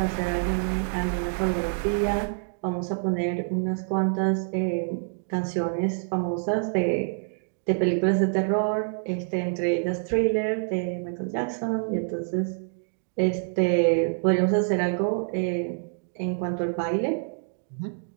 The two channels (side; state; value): left; silent; digital silence